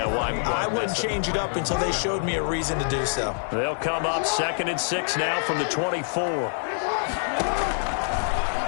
why I wouldn't change it up until they showed me a reason to do so. They'll come up 2nd and 6 now from the 24.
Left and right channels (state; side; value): silent; right; digital silence